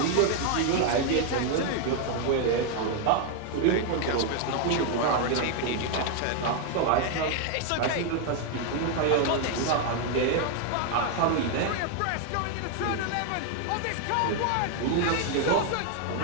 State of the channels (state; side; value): different; both; correlation 0.01